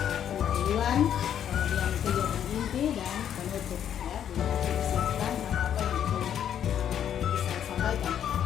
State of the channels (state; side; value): quieter; right; 9.6 dB